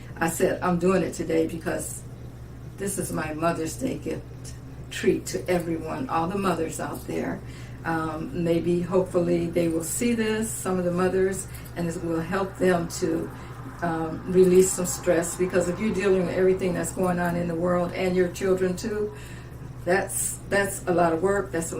I said, I'm doing it today because this is my Mother's Day gift treat to everyone, all the mothers out there. Maybe, hopefully, they will see this, some of the mothers, and it will help them to release some stress, because if you're dealing with everything that's going on in the world and your children too, that's a lot of work, that's a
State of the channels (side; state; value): both; identical; correlation 1.00